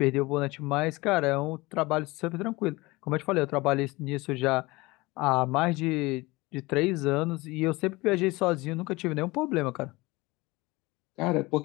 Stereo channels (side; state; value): right; quieter; 22.2 dB